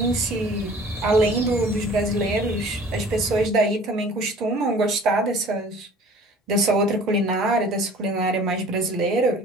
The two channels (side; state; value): both; normal; correlation 0.48